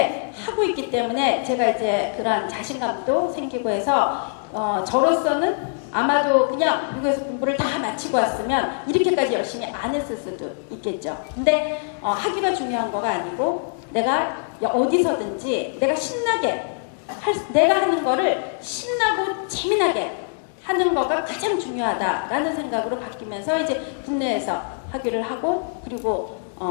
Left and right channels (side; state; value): right; silent; digital silence